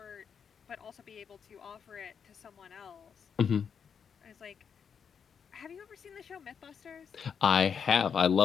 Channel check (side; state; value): right; quieter; 7.0 dB